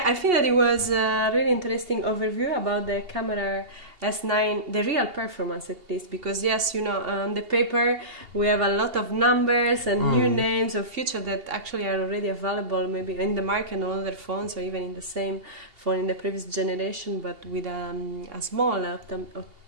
I think that it was a really interesting overview about the camera S9, the real performance at least, because yes, you know, on the paper we have a lot of numbers and new names of features that actually are already available maybe in the market on other phones, or even in the same phone in the previous generation, but with a small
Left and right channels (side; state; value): left; late; 2.8 ms